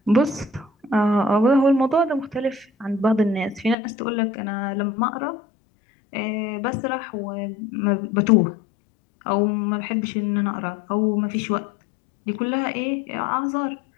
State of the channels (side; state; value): right; drops out; at 3.8 s